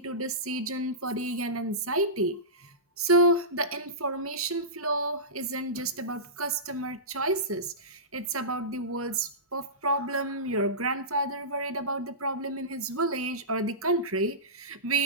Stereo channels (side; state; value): both; normal; correlation -0.19